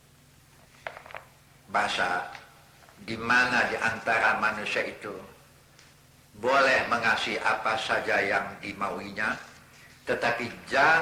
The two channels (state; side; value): identical; both; correlation 1.00